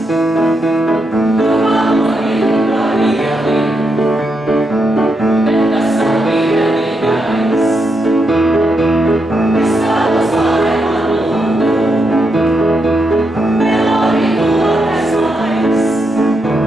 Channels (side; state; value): both; normal; correlation 0.82